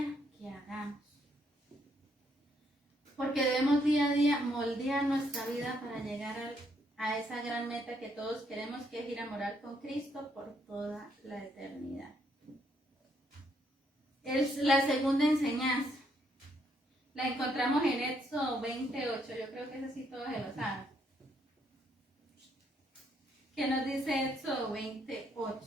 que hagamos. Porque debemos día a día moldear nuestra vida para llegar a esa gran meta que todos queremos, que es ir a morar con Cristo por toda la eternidad. Es la segunda enseñanza. La encontramos en Éxodo 28. Yo creo que ese sí todos se lo saben. ¿Qué nos dice Éxodo 28?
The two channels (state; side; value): normal; both; correlation 0.73